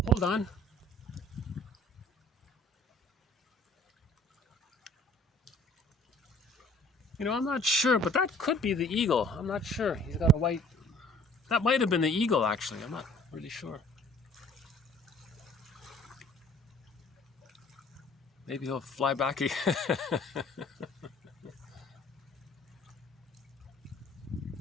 hold on. You know, I'm not sure, but that could be the eagle. I'm not sure. He's got a white. That might have been the eagle, actually. I'm not really sure. Maybe he'll fly back again.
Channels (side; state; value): both; normal; correlation 0.54